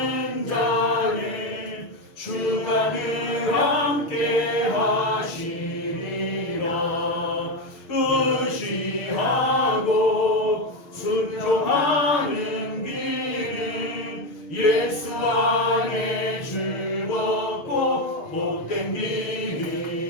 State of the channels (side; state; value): right; late; 6.5 ms